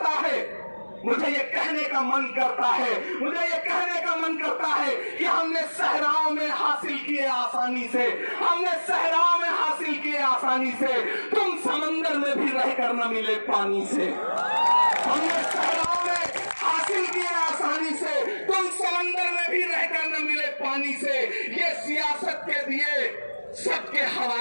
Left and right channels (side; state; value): both; inverted; correlation -1.00